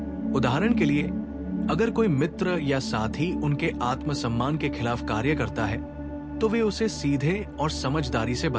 उदाहरण के लिए, अगर कोई मित्र या साथी उनके आत्मसम्मान के खिलाफ कार्य करता है, तो वे उसे सीधे और समझदारी से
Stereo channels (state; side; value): noise; left; rumble, 30 dB below the sound